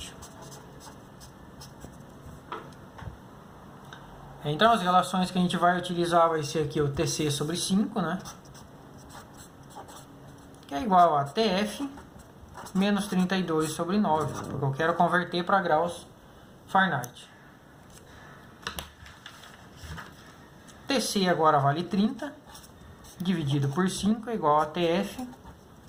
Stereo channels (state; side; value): identical; both; correlation 1.00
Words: Então as relações que a gente vai utilizar vai ser aqui o TC sobre 5, né? Que é igual a TF menos 32 sobre 9, porque eu quero converter para graus Fahrenheit. TC agora vale 30, dividido por 5 é igual a TF